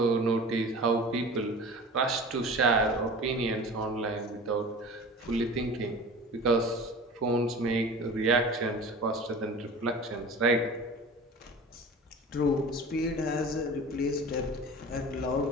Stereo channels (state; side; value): normal; both; correlation 0.38